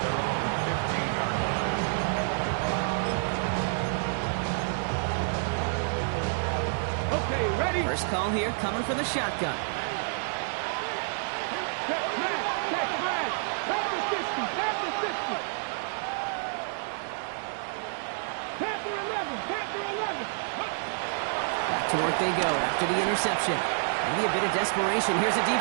Okay, ready? First call here coming from the shotgun. Check Brad. Panther 60. Panther 11. Back to work they go after the interception. Maybe a bit of desperation. Here's a deep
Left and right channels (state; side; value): silent; left; digital silence